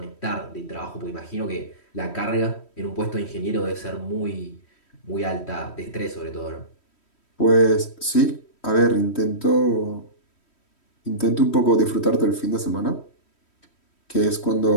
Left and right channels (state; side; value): late; right; 3.1 ms